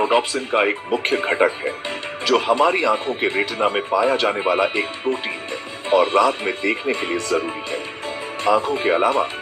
का एक मुख्य घटक है, जो हमारी आंखों के रेटिना में पाया जाने वाला एक प्रोटीन है और रात में देखने के लिए जरूरी है। आंखों के अलावा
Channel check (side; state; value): both; identical; correlation 1.00